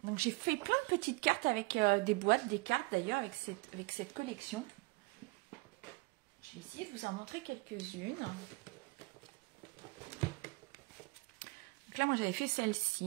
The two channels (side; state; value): left; quieter; 26.0 dB